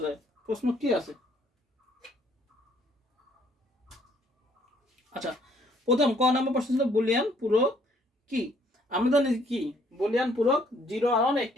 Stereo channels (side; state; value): both; normal; correlation 0.64